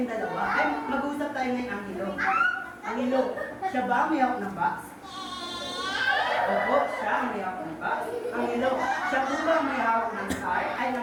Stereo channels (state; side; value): identical; both; correlation 1.00